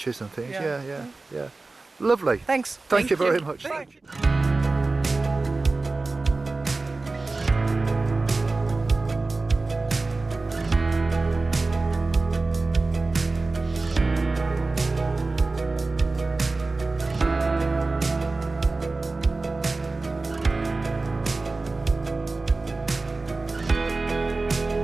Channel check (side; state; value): left; quieter; 3.5 dB